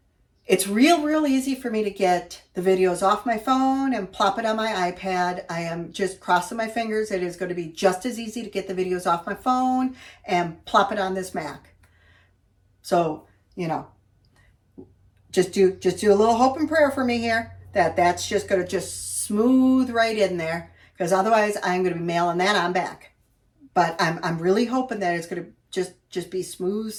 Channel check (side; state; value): both; identical; correlation 1.00